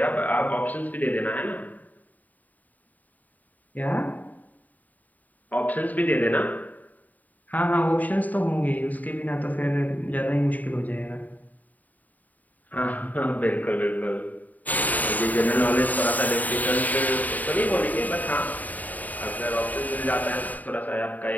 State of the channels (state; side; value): late; right; 0.078 ms